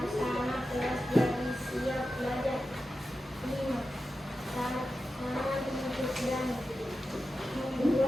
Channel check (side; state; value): both; normal; correlation 0.92